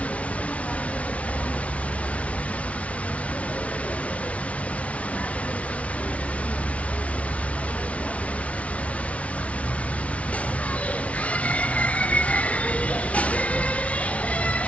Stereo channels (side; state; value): right; late; 0.064 ms